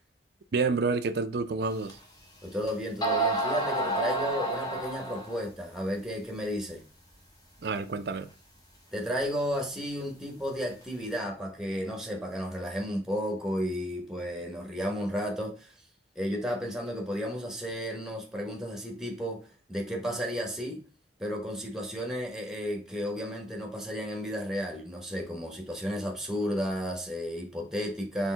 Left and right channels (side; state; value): both; normal; correlation 0.48